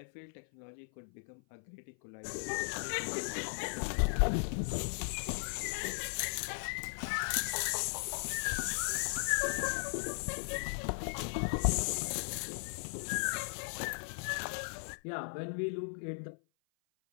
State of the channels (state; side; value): silent; right; 53 dB below the other